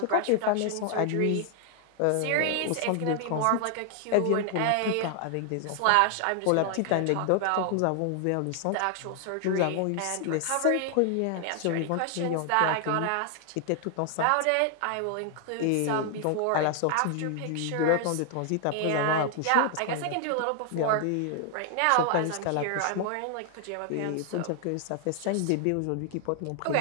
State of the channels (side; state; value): both; different; correlation 0.00